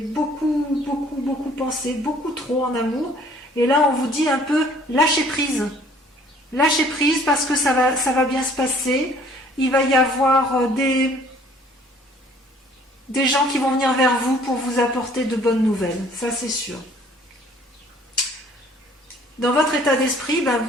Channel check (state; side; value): normal; both; correlation 0.57